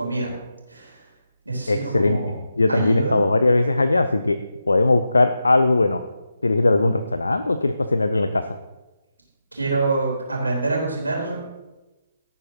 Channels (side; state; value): both; inverted; correlation -0.89